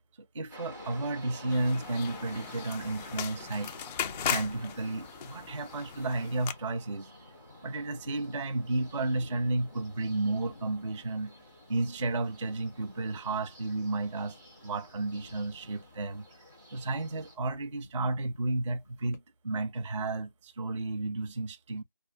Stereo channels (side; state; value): both; inverted; correlation -0.76